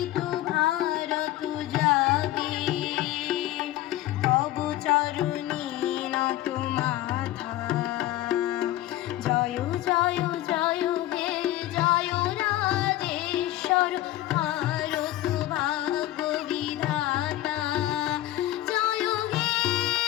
ভারত জাগে তব চরণে নত মাথা জয় জয় জয় হে জয় রাজেশ্বর ভারত ভাগ্য বিধাতা জয় হে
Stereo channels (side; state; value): right; quieter; 15.0 dB